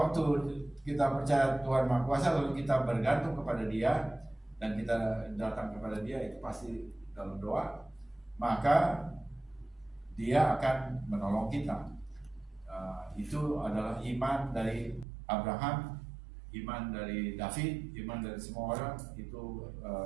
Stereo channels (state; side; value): drops out; left; at 15.1 s